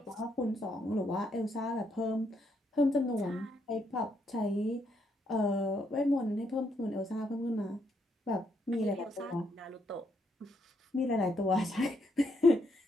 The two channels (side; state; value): both; normal; correlation 0.75